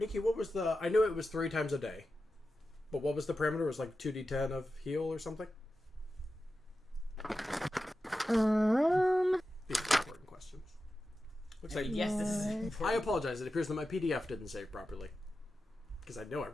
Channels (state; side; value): normal; both; correlation 0.92